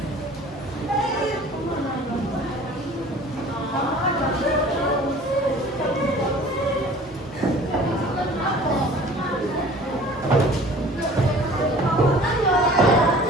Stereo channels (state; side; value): normal; both; correlation 0.47